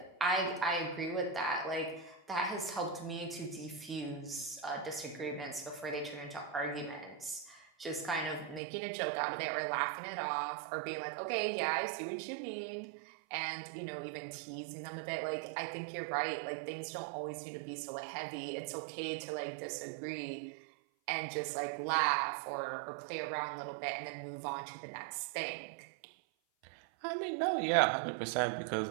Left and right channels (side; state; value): left; drops out; at 8.6 s